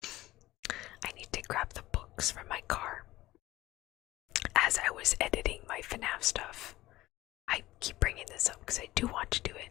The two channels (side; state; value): right; quieter; 17.1 dB